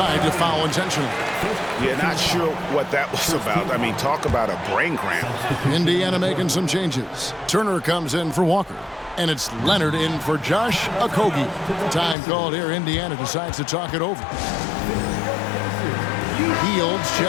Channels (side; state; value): right; drops out; at 12.2 s